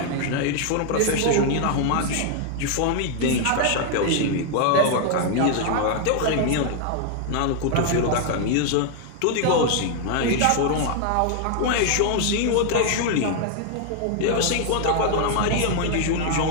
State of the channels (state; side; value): different; both; correlation 0.00